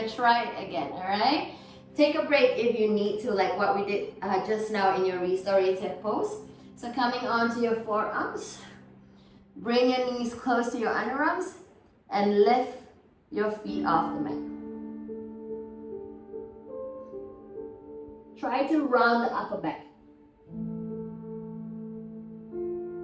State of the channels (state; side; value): identical; both; correlation 1.00